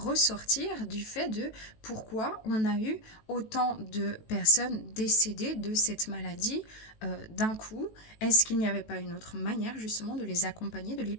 du fait de pourquoi on a eu autant de personnes décédées de cette maladie d'un coup. Est-ce qu'il n'y avait pas une autre manière justement de les accompagner, de les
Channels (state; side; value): late; right; 18 ms